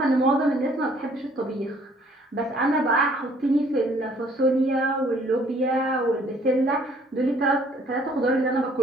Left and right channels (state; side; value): normal; both; correlation 0.60